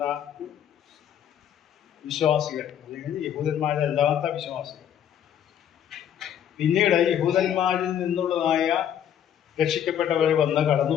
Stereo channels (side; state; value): right; quieter; 9.8 dB